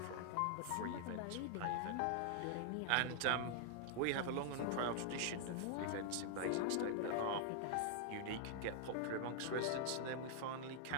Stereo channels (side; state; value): both; different; correlation -0.01